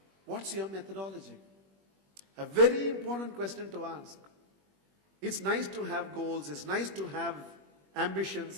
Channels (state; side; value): late; left; 21 ms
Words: What's your methodology? A very important question to ask. It's nice to have goals, it's nice to have